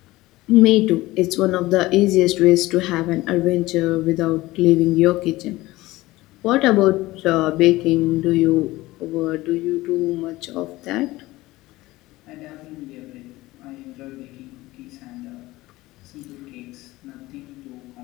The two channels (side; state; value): right; quieter; 18.8 dB